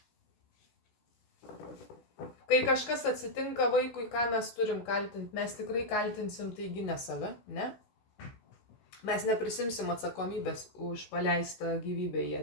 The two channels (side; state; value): right; late; 16 ms